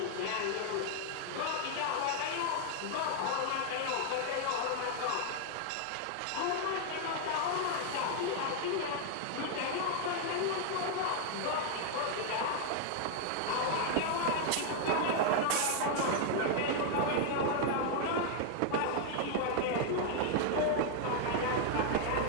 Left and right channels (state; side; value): different; both; correlation 0.00